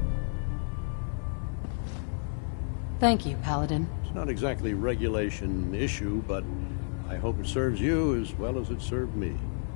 Thank you, Paladin. It's not exactly a regulation issue, but I hope it serves you as well as it served me.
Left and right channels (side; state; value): right; silent; 57 dB below the other